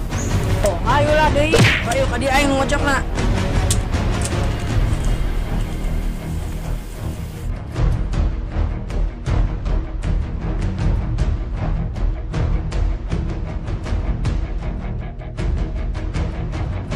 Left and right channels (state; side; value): identical; both; correlation 1.00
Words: Oh, ayolah deui. Ayo ka dieu aing ngocokna.